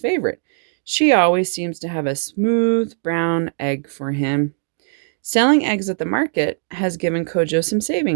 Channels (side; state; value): left; silent; 66 dB below the other